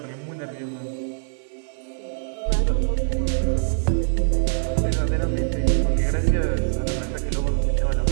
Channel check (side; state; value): left; silent; 63 dB below the other